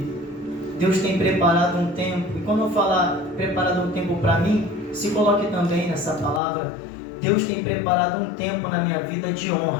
Deus tem preparado um tempo. E quando eu falar preparado um tempo para mim, se coloque também nessa palavra. Deus tem preparado um tempo na minha vida de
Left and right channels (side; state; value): right; drops out; at 6.4 s